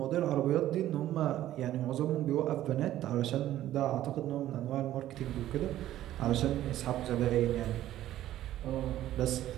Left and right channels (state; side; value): quieter; left; 13.4 dB